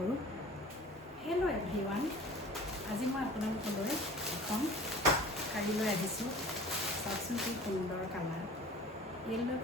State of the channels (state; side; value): normal; both; correlation 0.44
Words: হেল্ল' এভৰিৱান, আজি মই আপোনালোকলৈ এখন শাৰী লৈ আহিছোঁ। চাওকচোন কি সুন্দৰ কালাৰ। য়েল্ল'